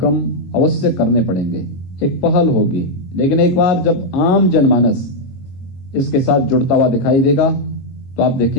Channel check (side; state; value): right; late; 22 ms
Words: अवश्य करने पड़ेंगे। एक पहल होगी, लेकिन एक बार जब आम जनमानस इसके साथ जुड़ता हुआ दिखाई देगा तो आप